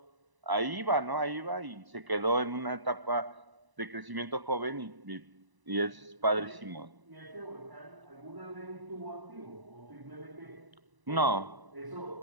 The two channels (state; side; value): late; left; 1.0 ms